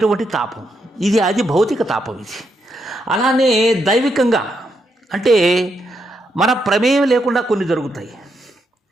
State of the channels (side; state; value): both; normal; correlation 0.80